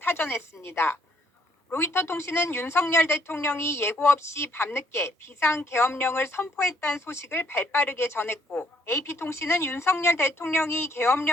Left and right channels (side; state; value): both; normal; correlation 0.68